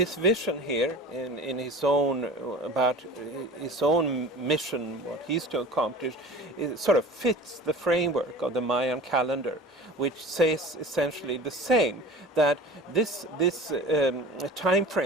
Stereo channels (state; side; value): normal; both; correlation 0.38